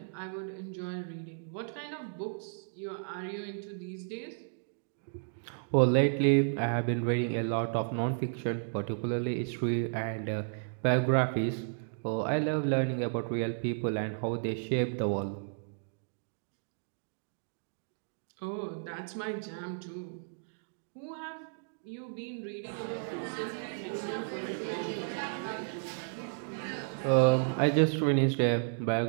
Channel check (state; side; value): silent; left; digital silence